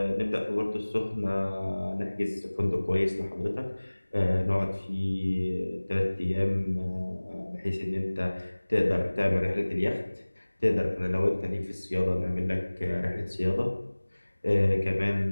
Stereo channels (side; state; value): both; inverted; correlation -1.00